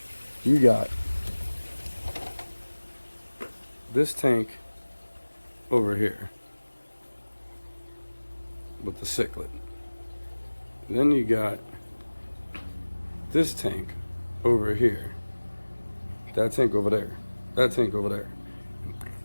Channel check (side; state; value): both; inverted; correlation -1.00